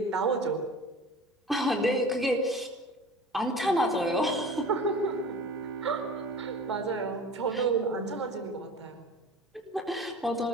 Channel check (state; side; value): normal; both; correlation 0.38